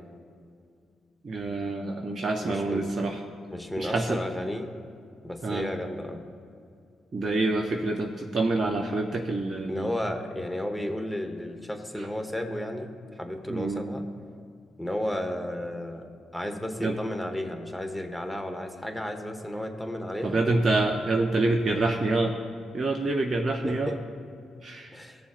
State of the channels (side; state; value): both; normal; correlation 0.87